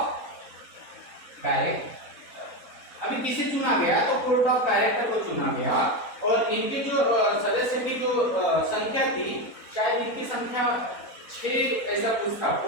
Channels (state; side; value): late; right; 4.0 ms